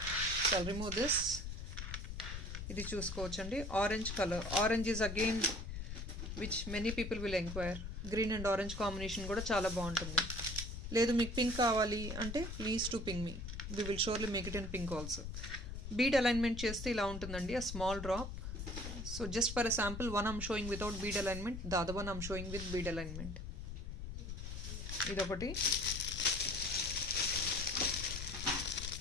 So I'll remove this. ఇది చూసుకోవచ్చండి, orange colour. Orange is again which many people will enquire. Green and orange combination కూడా చాలా బాగుంటుంది. లేదు మీకు పింక్ కావాలి అంటే please to ping me, we will surely make it in pink also. Bead alignment చేస్తే ఇలా ఉంటుందండి, a small drop. So just for a sample, one I'm showing without bead alignment, the other one I'm showing with bead alignment. Idokati.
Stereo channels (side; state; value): left; noise; rumble, 6 dB below the sound